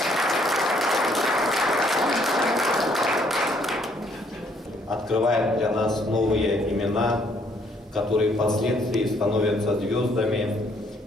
Открывает для нас новые имена, которые впоследствии становятся звездами.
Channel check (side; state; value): both; normal; correlation 0.66